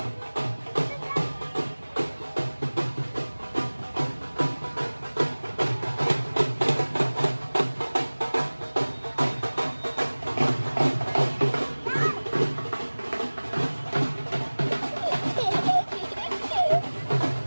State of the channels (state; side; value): inverted; both; correlation -1.00